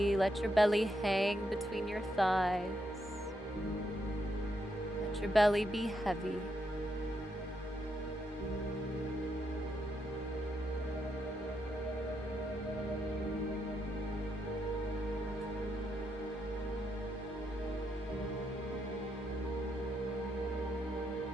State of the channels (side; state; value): both; normal; correlation 0.80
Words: Let your belly hang between your thighs. Let your belly be heavy.